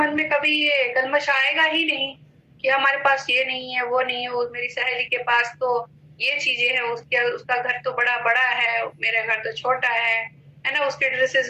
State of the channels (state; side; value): identical; both; correlation 1.00